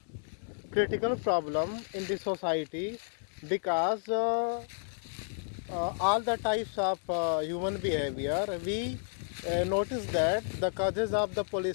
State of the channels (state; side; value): silent; right; digital silence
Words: critical problem in the society because all the types of human behavior, we notice that the causes of the